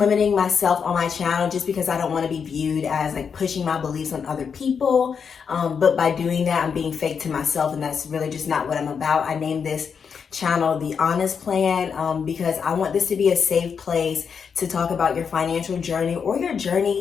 myself on my channel just because I don't want to be viewed as like pushing my beliefs on other people. But by doing that, I'm being fake to myself, and that's really just not what I'm about. I named this channel The Honest Plan because I want this to be a safe place to talk about your financial journey or your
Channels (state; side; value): quieter; right; 6.5 dB